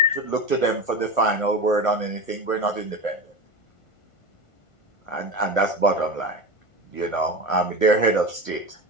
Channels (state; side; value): late; right; 1.1 ms